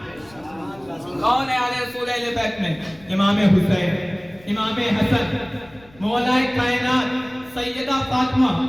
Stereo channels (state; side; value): noise; left; rumble, 26 dB below the sound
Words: کون ہے آل رسول اہل بیت میں؟ امام حسین، امام حسن، مولا کائنات سیدہ فاطمہ،